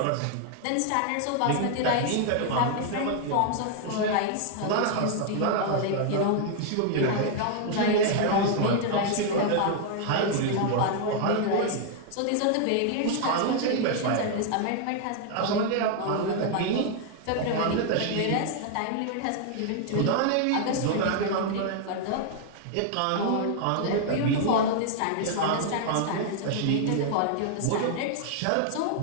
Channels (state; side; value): different; both; correlation 0.00